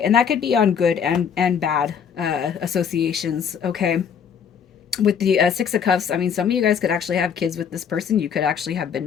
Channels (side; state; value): right; quieter; 7.4 dB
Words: and that could be on good and bad associations. Okay, with the Six of Cups, I mean, some of you guys could actually have kids with this person. You could actually have been